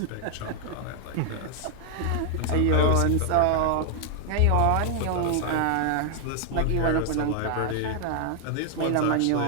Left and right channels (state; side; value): different; both; correlation 0.00